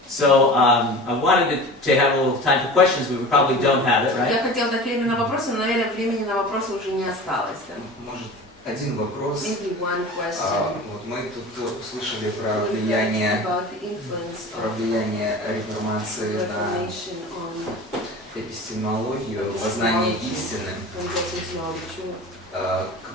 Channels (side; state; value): both; normal; correlation 0.36